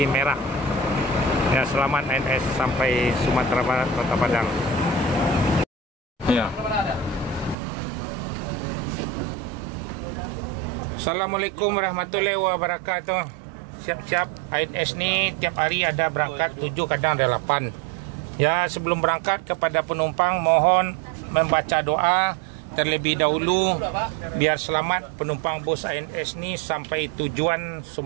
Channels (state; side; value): drops out; left; at 7.6 s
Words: Merah. Ya, selamat INS sampai Sumatera Barat Kota Padang. Ya. Assalamualaikum warahmatullahi wabarakatuh. Siap-siap, INS ini tiap hari ada berangkat 7, kadang ada 8. Ya, sebelum berangkat kepada penumpang mohon membaca doa terlebih dahulu biar selamat penumpang bus ANS ni sampai tujuan